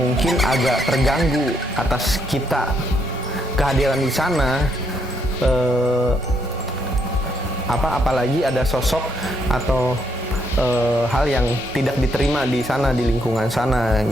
agak terganggu atas kita kehadiran di sana. Apalagi ada sosok atau hal yang tidak diterima di sana, di lingkungan sana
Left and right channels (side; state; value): both; normal; correlation 0.74